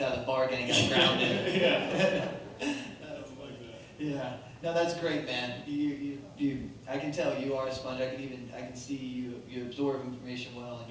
of the bar and you got grounded. Yeah. No, that's great, man. You I can tell you are a sponge. I can see you absorb information well, and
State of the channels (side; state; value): both; identical; correlation 1.00